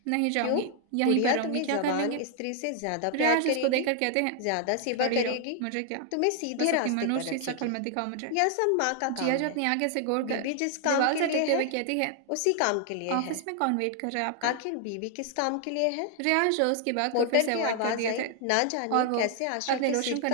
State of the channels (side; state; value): both; different; correlation 0.00